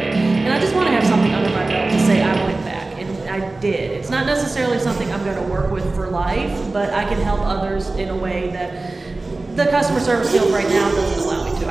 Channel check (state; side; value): quieter; left; 3.2 dB